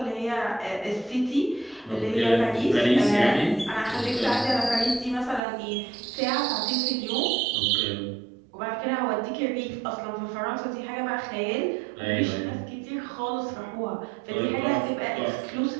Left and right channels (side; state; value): left; drops out; at 5.4 s